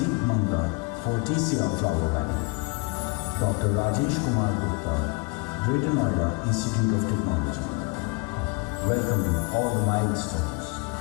Manga, for TCR Flower Valley, Dr. Rajesh Kumar Gupta, Greater Noida Institute of Technology. Welcoming all the milestones.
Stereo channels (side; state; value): right; quieter; 29.7 dB